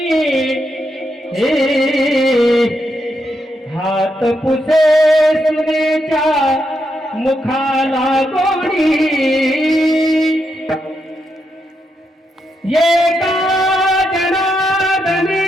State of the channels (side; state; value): both; normal; correlation 0.82